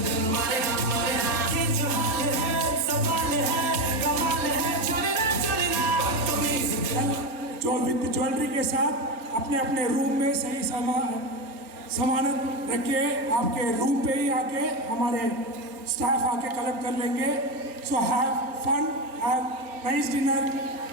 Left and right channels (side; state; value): left; late; 4.5 ms